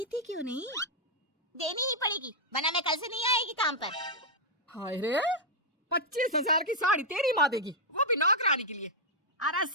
क्यों नहीं? देनी ही पड़ेगी, वरना मैं कल से नहीं आएगी काम पर। हाय रे, 25,000 की साड़ी तेरी माँ देगी, वो भी नौकरानी के लिए? अरे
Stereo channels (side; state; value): both; normal; correlation -0.02